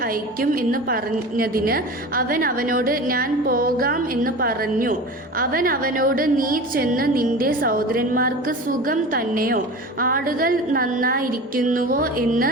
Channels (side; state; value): both; normal; correlation 0.33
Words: അയക്കും എന്ന് പറഞ്ഞതിന് അവൻ അവനോട്, ഞാൻ പോകാം എന്ന് പറഞ്ഞു. അവൻ അവനോട്, നീ ചെന്ന് നിന്റെ സഹോദരന്മാർക്ക് സുഖം തന്നെയോ, ആടുകൾ നന്നായിരിക്കുന്നുവോ എന്ന്